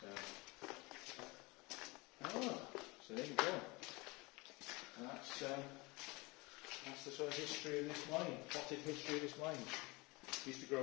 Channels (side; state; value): right; quieter; 24.9 dB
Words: So there you go. And that's the sort of history of this mine, potted history of this mine. Used to grow